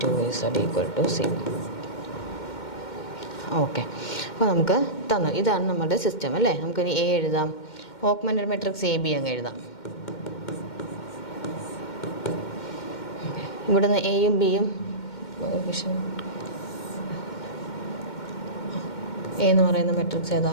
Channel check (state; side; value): late; right; 2.1 ms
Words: 2z = c. Okay, അപ്പോൾ നമുക്ക് തന്നു ഇതാണ് നമ്മുടെ സിസ്റ്റം അല്ലേ? നമുക്കിനി എ എഴുതാം. ഓഗ്മെൻറ്റഡ് മെട്രിക്സ് എ ബി അങ്ങ് എഴുതാം. ഇവിടുന്ന് എയും ബിയും എ എന്ന് പറയുന്ന മെട്രിക്സ് ഏതാ?